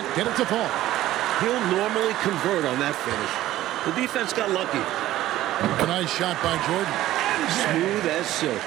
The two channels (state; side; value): quieter; left; 14.6 dB